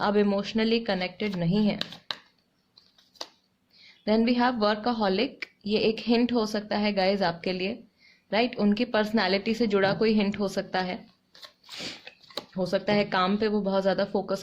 इमोशनली कनेक्टेड नहीं है. Then we have workaholic. ये एक हिंट हो सकता है गाइज आपके लिए, राइट. उनकी पर्सनैलिटी से जुड़ा कोई हिंट हो सकता है काम पे वो बहुत ज़्यादा फोकस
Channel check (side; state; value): both; identical; correlation 1.00